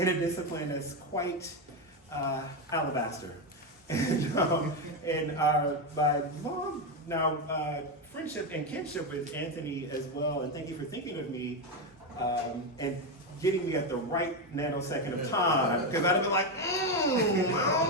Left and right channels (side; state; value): both; normal; correlation 0.09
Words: a discipline that's quite alabaster. And by long now friendship and kinship with Anthony as well, and thank you for thinking of me and getting me at the right nanosecond of time, because I'd have been like, I don't